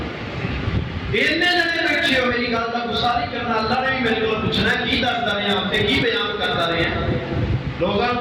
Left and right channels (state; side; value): identical; both; correlation 1.00